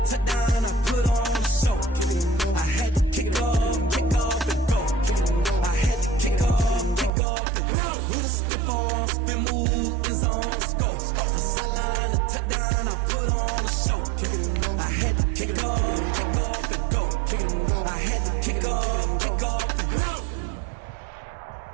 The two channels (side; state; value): left; drops out; at 7.1 s